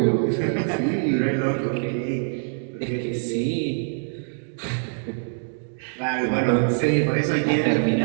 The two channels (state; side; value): silent; left; digital silence